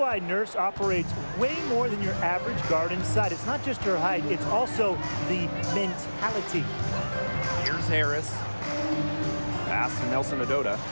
Nurse operates way more than your average guard inside. It's not just her height, it's also the mentality. Here's Harris. Pass to Nelson Adota.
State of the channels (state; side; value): inverted; both; correlation -1.00